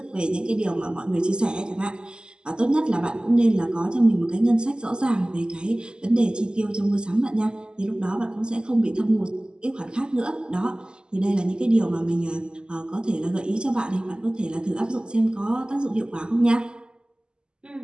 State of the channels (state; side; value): late; left; 0.048 ms